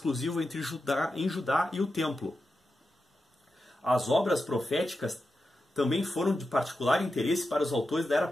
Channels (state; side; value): normal; both; correlation 0.90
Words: em Judá e o Templo. As obras proféticas também foram de particular interesse para os autores da era